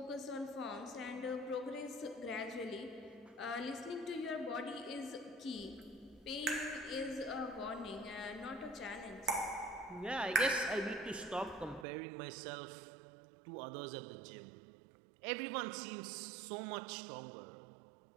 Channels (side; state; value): left; drops out; at 11.9 s